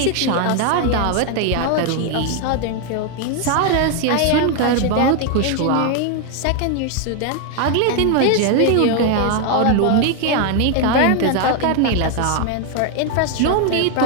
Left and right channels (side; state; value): both; different; correlation 0.01